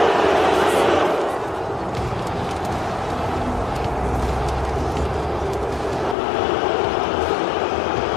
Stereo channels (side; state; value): right; drops out; at 6.2 s